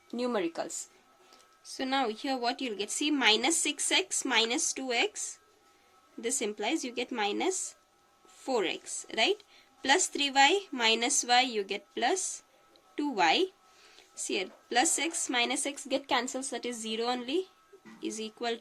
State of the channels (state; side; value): identical; both; correlation 1.00